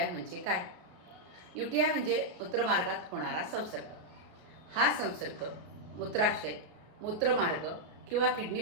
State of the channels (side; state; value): left; late; 33 ms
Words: म्हणजे काय? UTI म्हणजे मूत्रमार्गात होणारा संसर्ग. हा संसर्ग मूत्राशय, मूत्रमार्ग किंवा